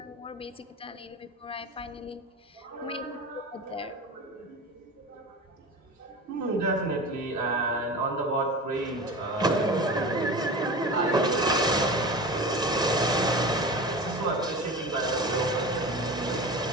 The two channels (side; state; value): both; normal; correlation 0.32